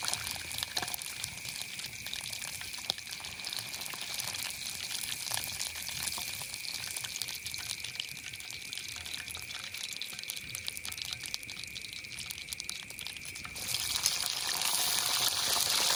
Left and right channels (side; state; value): both; identical; correlation 1.00